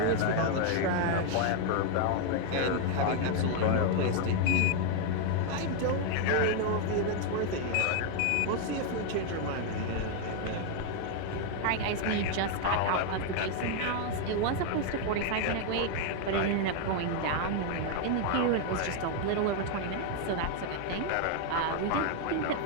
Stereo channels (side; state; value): both; different; correlation 0.00